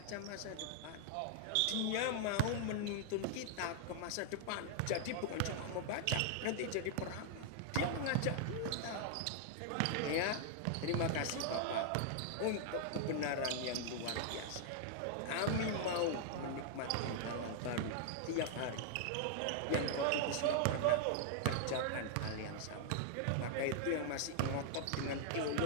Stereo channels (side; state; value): both; different; correlation 0.00